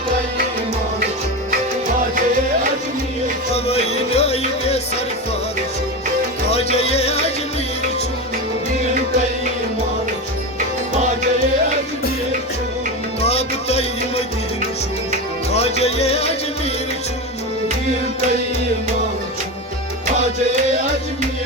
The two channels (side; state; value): both; normal; correlation 0.21